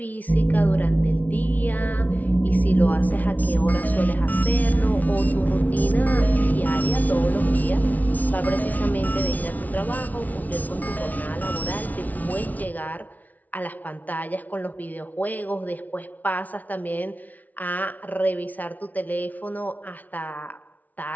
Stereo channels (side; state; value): right; late; 0.076 ms